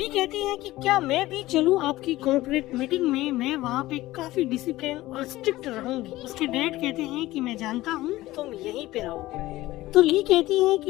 कहती है कि क्या मैं भी चलूं आपकी कॉर्पोरेट मीटिंग में, मैं वहाँ पे काफी डिसिप्लिन और स्ट्रिक्ट रहूंगी। उसके डैड कहते हैं कि मैं जानता हूँ तुम यहीं पे रहो। तो ली कहती है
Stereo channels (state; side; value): quieter; right; 17.2 dB